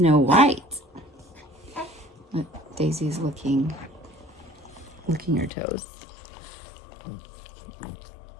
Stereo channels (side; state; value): right; drops out; at 5.5 s